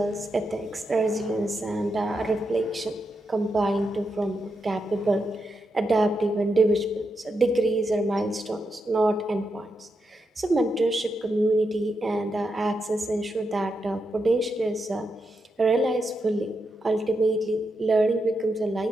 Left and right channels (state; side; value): normal; both; correlation 0.85